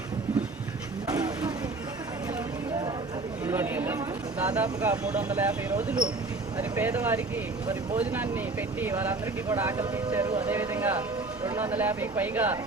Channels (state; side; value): quieter; left; 3.5 dB